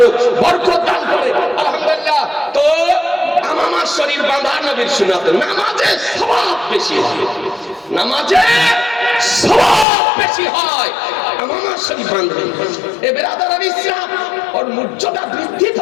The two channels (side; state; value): right; drops out; at 9.9 s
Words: বরকত দান করে, আলহামদুলিল্লাহ। তো আমামা শরীফ বাঁধা নবীর সুন্নাত। নামাজে সওয়াব বেশি হয়, নামাজে সওয়াব বেশি হয় আমামা শরীফ বাঁধলে। এ বেরাদারান ইসলাম, ওর মর্যাদা বৃদ্ধি